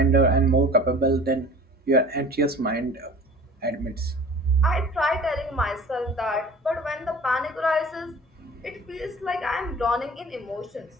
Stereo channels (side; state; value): both; normal; correlation 0.43